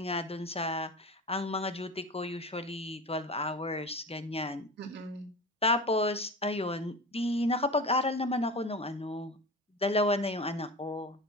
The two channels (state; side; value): normal; both; correlation 0.31